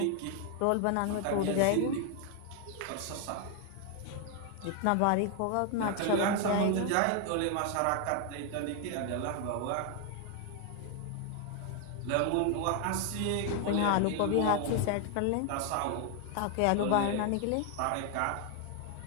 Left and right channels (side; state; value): both; different; correlation 0.01